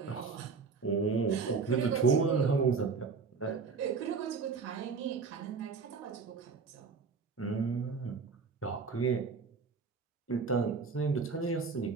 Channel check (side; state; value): left; quieter; 5.0 dB